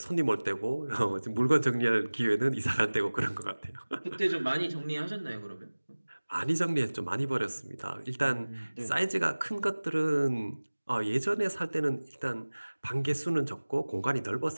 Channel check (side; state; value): both; inverted; correlation -1.00